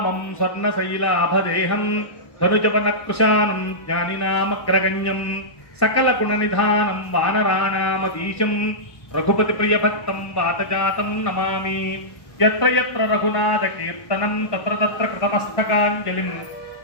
స్వర్ణశైలాభదేహం ధనుజవనకృశానం జ్ఞానినామగ్రగణ్యం సకల గుణనిధానం వానరాణామధీశం రఘుపతి ప్రియభక్తం వాతజాతం నమామి. యత్ర యత్ర రఘునాథ కీర్తనం తత్ర తత్ర కృతమస్తకాంజలిం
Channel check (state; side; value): late; right; 1.1 ms